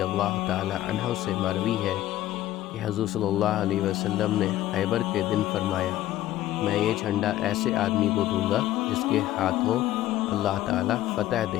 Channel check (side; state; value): right; quieter; 14.0 dB